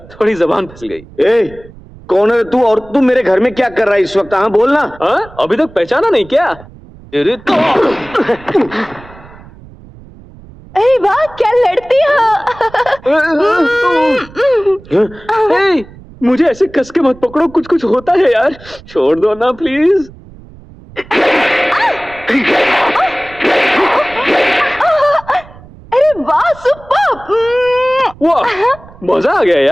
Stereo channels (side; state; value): right; noise; rumble, 21 dB below the sound